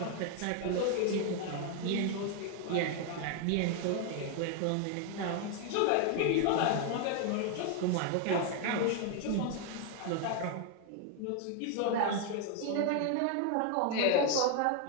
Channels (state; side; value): different; both; correlation 0.00